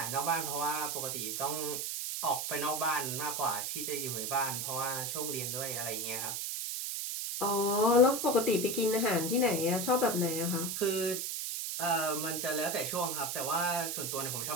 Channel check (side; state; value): right; noise; hiss, 2 dB below the sound